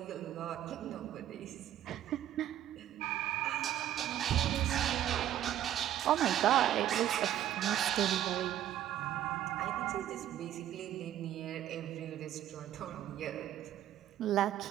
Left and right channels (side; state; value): left; quieter; 11.8 dB